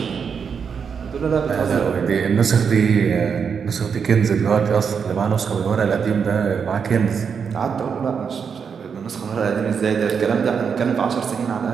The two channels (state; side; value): quieter; left; 6.5 dB